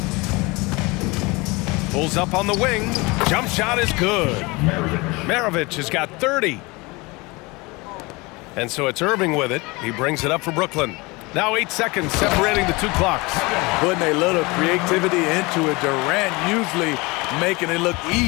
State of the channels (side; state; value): right; quieter; 24.9 dB